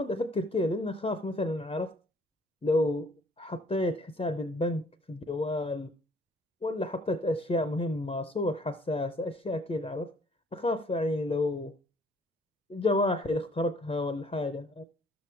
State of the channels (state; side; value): normal; both; correlation 0.60